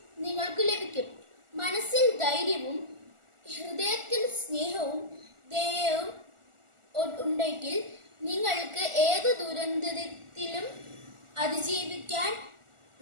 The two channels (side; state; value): left; late; 1.4 ms